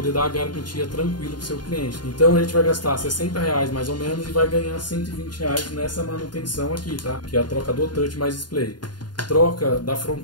dar a garantia tranquilo para o seu cliente. Então a gente vai gastar R$60 mais ou menos e vai ganhar R$120 nessa manutenção aqui, tá? Que é a troca do touch mais display. Troca da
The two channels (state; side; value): late; right; 0.70 ms